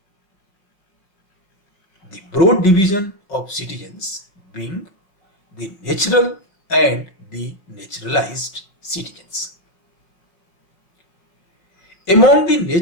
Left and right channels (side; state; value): right; late; 5.3 ms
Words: The broad division of citizens being the natural and the naturalized citizens. Among the